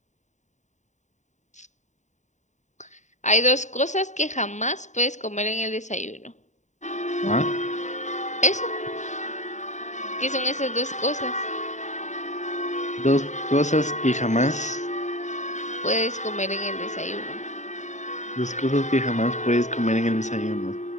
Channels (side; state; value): right; late; 0.34 ms